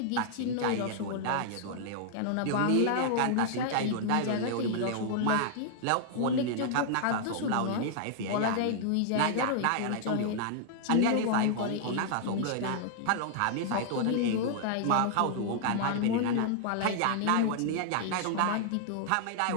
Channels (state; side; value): different; both; correlation -0.01